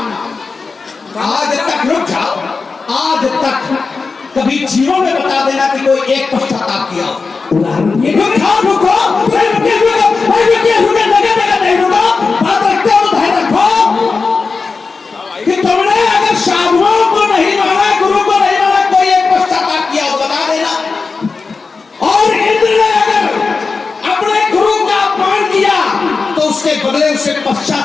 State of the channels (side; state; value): right; quieter; 4.4 dB